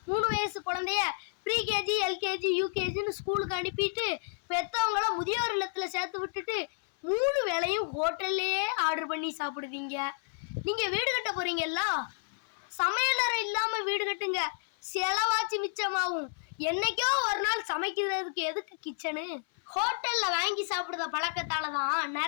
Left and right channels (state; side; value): silent; right; 57 dB below the other